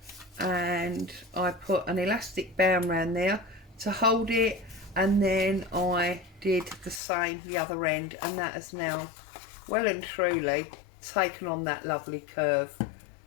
and I put an elastic band around there to hold it, and then I did the same the other end, and that has now well and truly taken on that lovely curve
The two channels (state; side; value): drops out; right; at 7.0 s